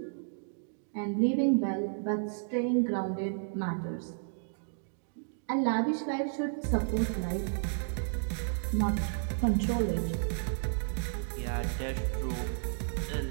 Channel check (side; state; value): left; silent; digital silence